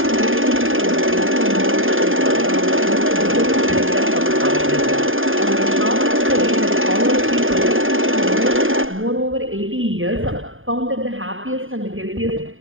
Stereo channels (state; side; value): late; left; 0.59 ms